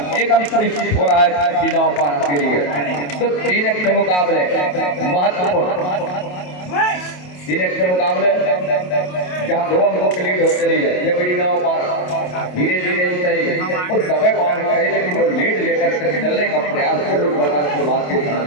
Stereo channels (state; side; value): late; right; 28 ms